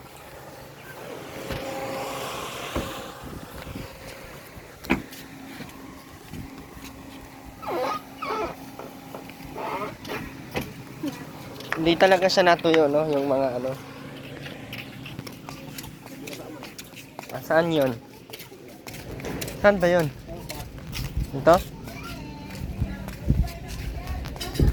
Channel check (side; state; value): both; identical; correlation 1.00